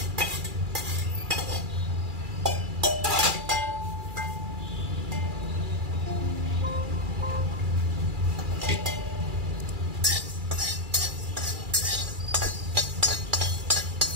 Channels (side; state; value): left; late; 2.3 ms